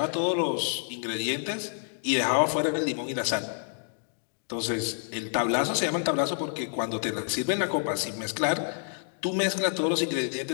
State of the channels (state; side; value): silent; right; digital silence